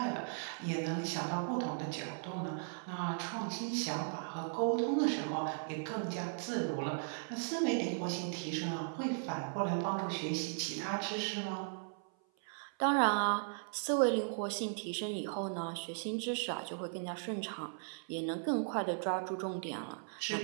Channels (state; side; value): silent; left; 53 dB below the other